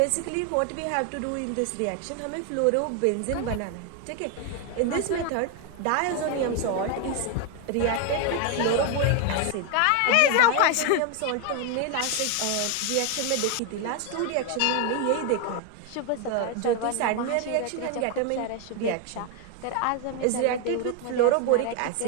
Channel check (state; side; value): different; both; correlation 0.01